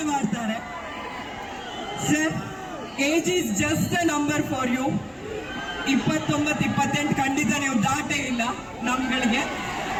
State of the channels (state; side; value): identical; both; correlation 1.00